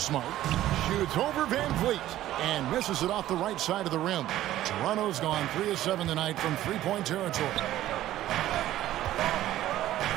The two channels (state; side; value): quieter; left; 13.9 dB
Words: Shoots over Van Vliet. And misses it off the right side of the rim. Toronto's gone 3 of 7 tonight from three-point territory.